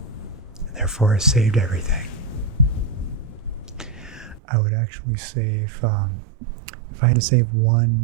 Therefore, I saved everything. I would actually save, if I had to save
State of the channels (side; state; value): left; drops out; at 4.4 s